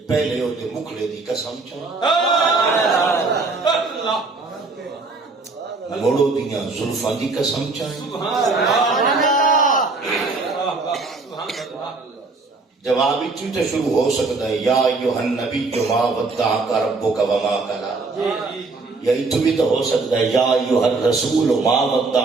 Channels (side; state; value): left; quieter; 3.7 dB